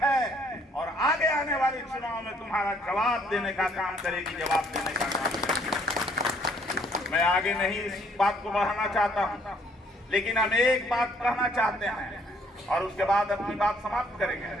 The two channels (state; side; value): normal; both; correlation 0.64